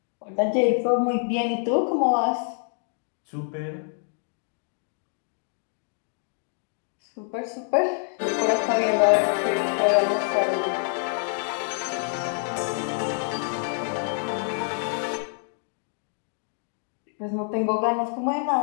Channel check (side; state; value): right; silent; 60 dB below the other